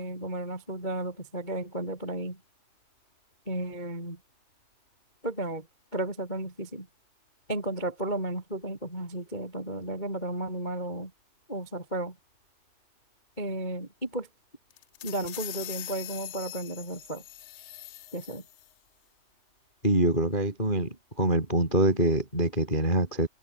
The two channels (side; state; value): right; late; 3.2 ms